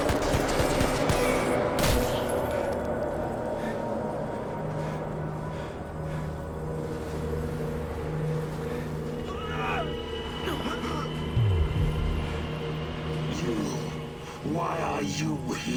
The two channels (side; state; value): both; identical; correlation 1.00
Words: Why are you